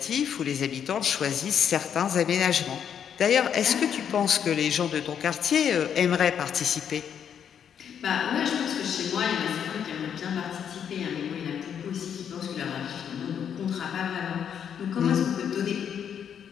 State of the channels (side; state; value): right; quieter; 8.4 dB